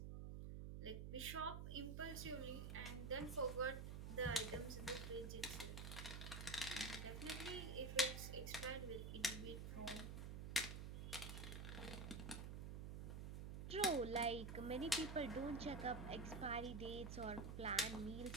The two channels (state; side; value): noise; right; hum, 5 dB below the sound